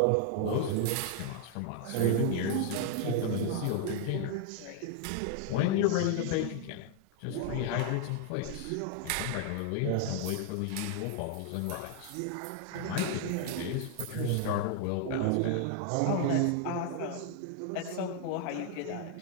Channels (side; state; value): both; different; correlation 0.00